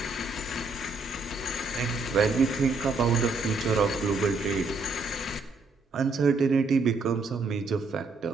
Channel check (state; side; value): quieter; left; 3.7 dB